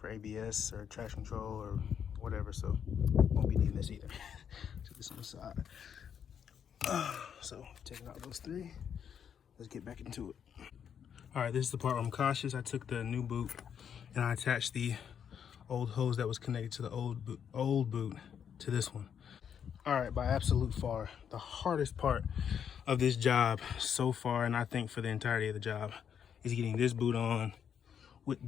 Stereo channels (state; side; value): quieter; right; 8.1 dB